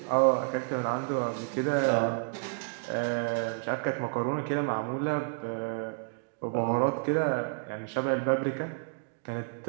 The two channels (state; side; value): quieter; left; 38.3 dB